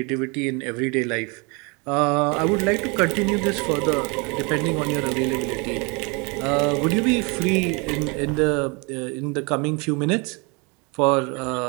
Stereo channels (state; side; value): quieter; left; 30.4 dB